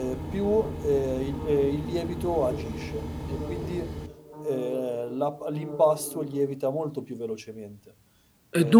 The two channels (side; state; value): both; identical; correlation 1.00